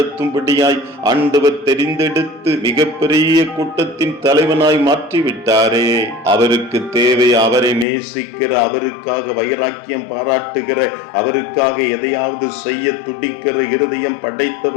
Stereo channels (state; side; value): drops out; right; at 7.9 s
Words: ஆண்டவர் தெரிந்தெடுத்து மிகப்பெரிய கூட்டத்தின் தலைவனாய் மாற்றிவிட்டாரே. அவருக்கு தேவை அவரை நேசிக்கிற, அவருக்காக வைராக்கியம் பாராட்டுகிற, அவருக்காக எதையாவது செய்ய துடிக்கிற இருதயம்